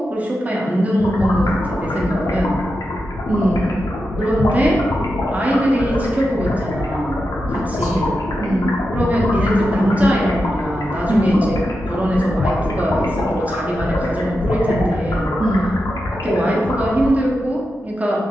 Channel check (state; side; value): normal; both; correlation 0.89